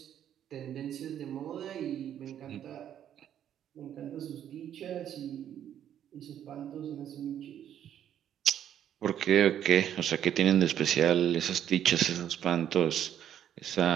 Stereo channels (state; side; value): quieter; left; 10.1 dB